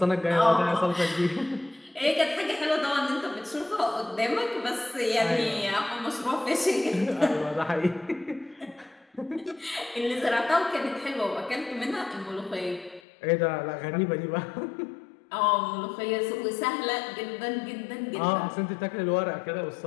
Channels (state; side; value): drops out; right; at 13.0 s